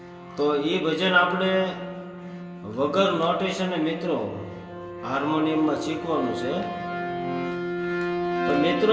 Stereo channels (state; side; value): identical; both; correlation 1.00